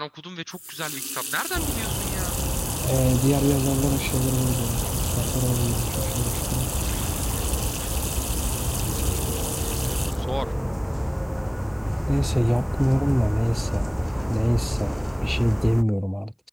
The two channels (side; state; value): both; identical; correlation 1.00